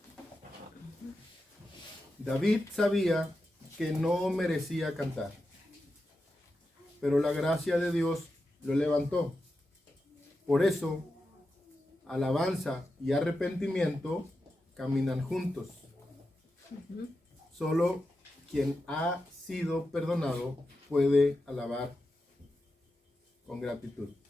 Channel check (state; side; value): normal; both; correlation 0.90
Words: David sabía que no merecía cantar, pero la gracia de Dios lo levantó. Por eso, alabanza y arrepentimiento caminan juntos. Solo quien ha sido perdonado puede alabar con gratitud.